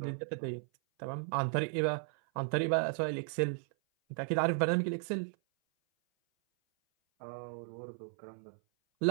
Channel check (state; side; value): silent; left; 55 dB below the other